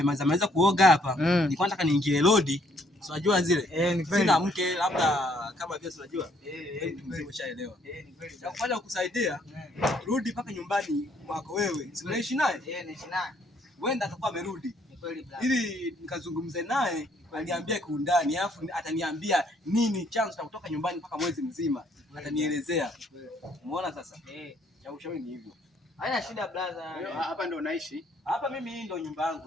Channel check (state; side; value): normal; both; correlation 0.67